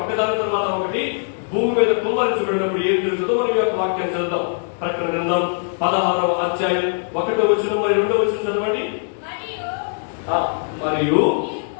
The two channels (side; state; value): right; silent; digital silence